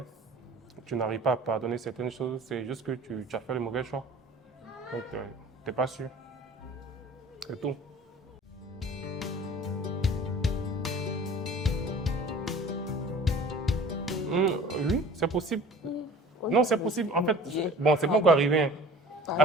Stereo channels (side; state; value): both; normal; correlation 0.45